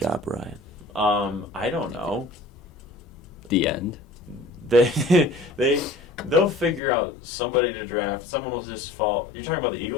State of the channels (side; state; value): right; drops out; at 6.8 s